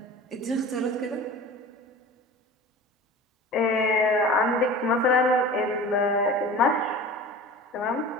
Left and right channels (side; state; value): both; normal; correlation 0.37